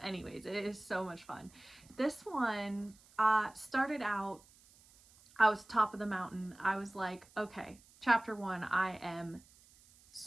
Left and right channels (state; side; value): noise; right; hiss, 26 dB below the sound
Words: anyways, it is so much fun. This one started out, I was top of the mountain. I was like, okay, chapter 1, I am